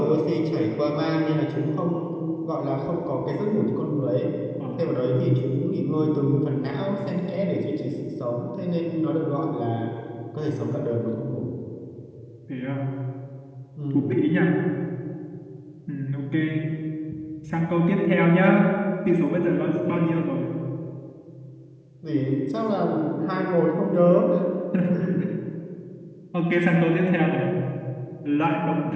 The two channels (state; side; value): identical; both; correlation 1.00